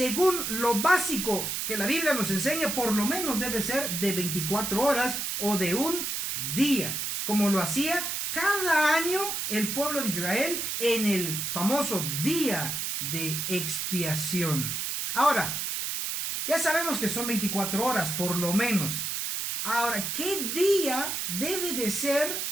lo básico que la Biblia nos enseña, por lo menos debe ser de 24 horas o de un día, como lo hacía cada año el pueblo de Israel en el famoso día de expiación. Ahora, ya sabemos que son 24 horas, por lo menos. Ahora, ¿qué día debe de ser?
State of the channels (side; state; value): right; noise; hiss, 2 dB below the sound